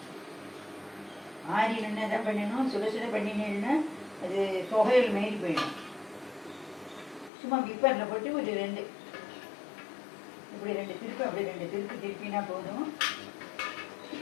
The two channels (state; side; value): drops out; right; at 7.3 s